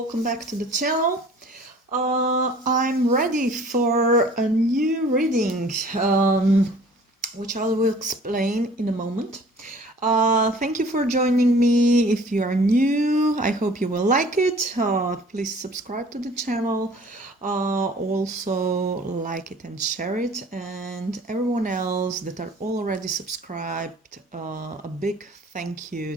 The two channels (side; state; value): both; normal; correlation 0.50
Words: back to the channel. I'm ready for a new reading, which I will explain in a moment. Thank you for joining me. If you are new, I hope you will like it. Please subscribe to the channel. Also like it and share it. And everyone else that are already subscribed, a big thank you